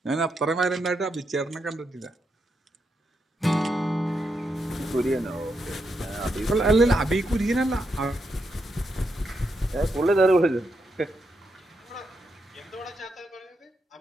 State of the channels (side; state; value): both; normal; correlation 0.83